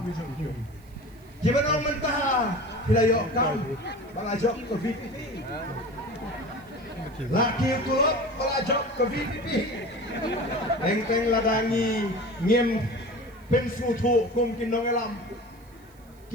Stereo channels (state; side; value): noise; right; hiss, 29 dB below the sound